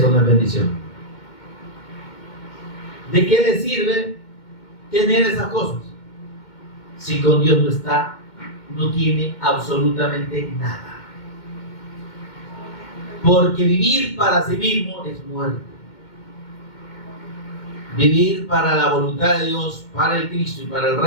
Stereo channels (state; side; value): late; right; 2.2 ms